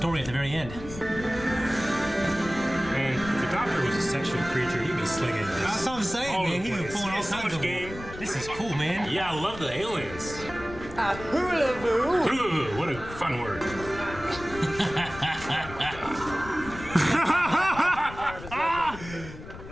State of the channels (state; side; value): noise; left; rumble, 13 dB below the sound